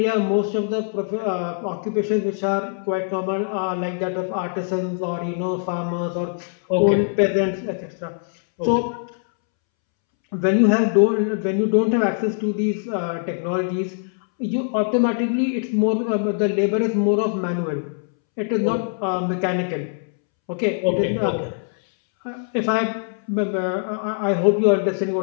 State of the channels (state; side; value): silent; right; 64 dB below the other